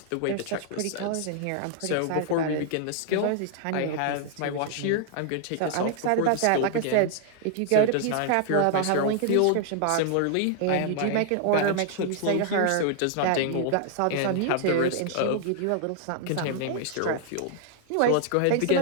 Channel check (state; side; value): different; both; correlation -0.01